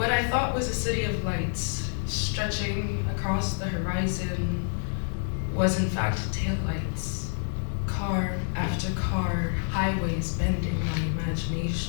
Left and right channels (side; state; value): right; silent; 57 dB below the other